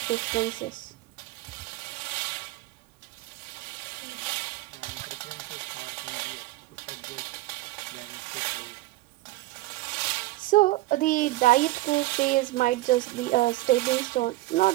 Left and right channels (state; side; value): quieter; left; 18.3 dB